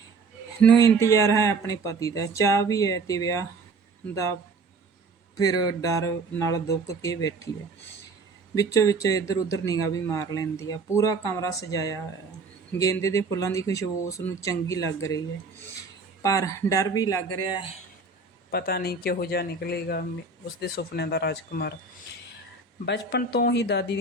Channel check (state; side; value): quieter; left; 4.1 dB